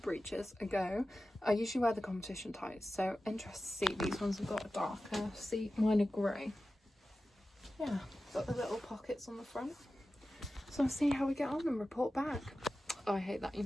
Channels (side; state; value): both; normal; correlation 0.94